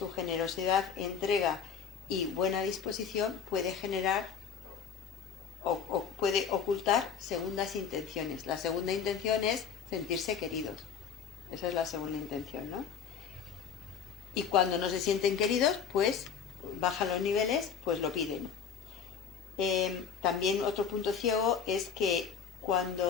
generosidad, entrega y buena disposición puede generar o puede ocultar segundas intenciones. La segunda intención es sentirse queridos. Esa es la segunda intención, ¿no? Y cuando no se sienten queridos, pues bajan los niveles, pues lo piden. También otro punto ciego es que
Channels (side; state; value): right; quieter; 7.0 dB